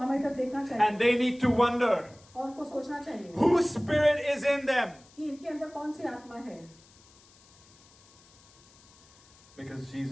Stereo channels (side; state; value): left; noise; hiss, 27 dB below the sound